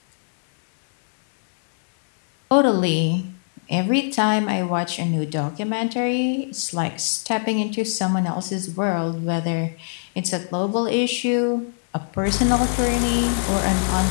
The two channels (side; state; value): right; silent; digital silence